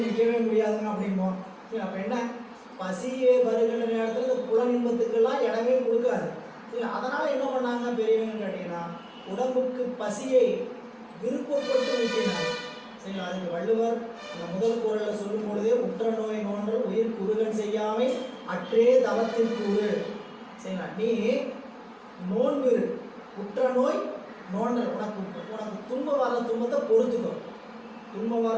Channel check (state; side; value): identical; both; correlation 1.00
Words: நிற்கவே முடியாதுங்க அப்படிம்போம். சரி, அப்போ என்ன, பசியே வருகின்ற நேரத்தில் இந்த புல இன்பத்துக்கெல்லாம் இடமே கொடுக்காது. சரி, அதனால் என்ன பண்ணாங்க பெரியவங்கன்னு கேட்டிங்கன்னா உடம்புக்கு பசியை விருப்பப்பட்டு ஊட்டினாங்க. சரிங்களா? அதுக்கு வள்ளுவர் அந்த முதல் குறளில் சொல்லும் பொழுதே உற்ற நோய் நோன்றல் உயிர் குறுகன் செய்யாமை அற்றே தவத்திற்குறு. சரிங்களா? நீ நோன்பு, உற்ற நோய் நோண்டல், உனக்கு துன்பம் வர துன்பத்தை பொறுத்துக்கோ. துன்பம்